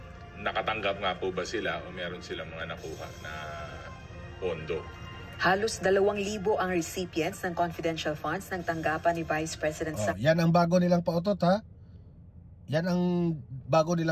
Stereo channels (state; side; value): identical; both; correlation 1.00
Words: nakatanggap nga po ba sila o meron silang mga nakuha na pondo. Halos 2,000 ang recipients ng confidential funds ng tanggapan ni Vice President yan ang bago nilang pautot Yan ang bago